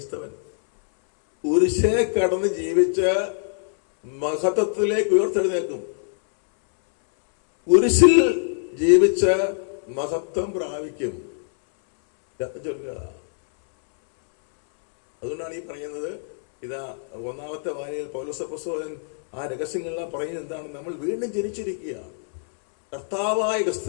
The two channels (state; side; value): silent; right; 63 dB below the other